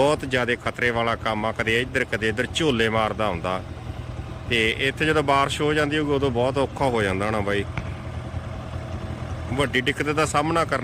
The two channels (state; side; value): identical; both; correlation 1.00